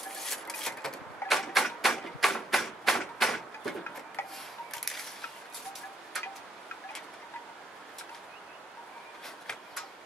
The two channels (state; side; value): normal; both; correlation 0.72